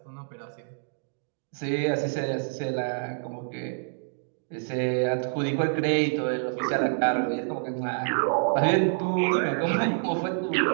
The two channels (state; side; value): silent; left; digital silence